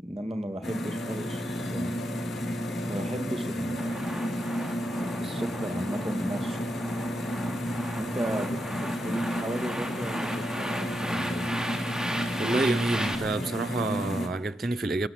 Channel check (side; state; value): both; normal; correlation 0.84